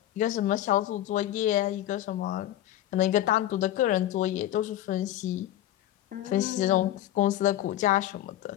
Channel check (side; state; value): right; quieter; 13.1 dB